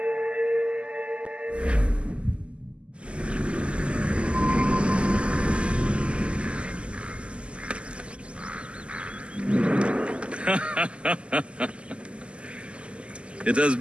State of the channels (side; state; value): left; late; 0.054 ms